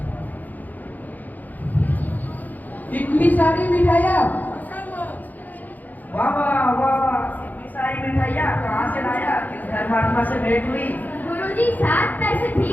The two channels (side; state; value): right; late; 0.083 ms